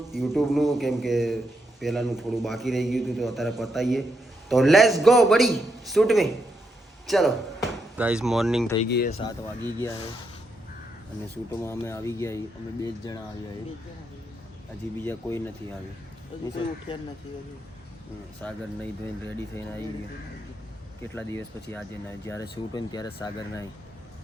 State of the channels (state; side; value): normal; both; correlation 0.81